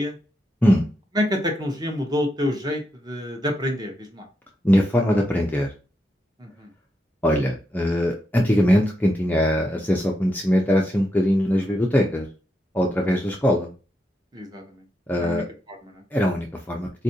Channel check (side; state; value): both; normal; correlation 0.83